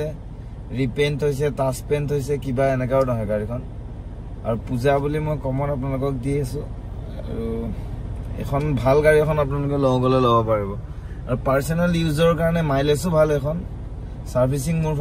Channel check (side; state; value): both; identical; correlation 1.00